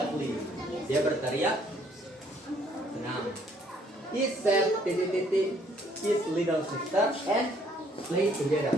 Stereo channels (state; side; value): normal; both; correlation 0.64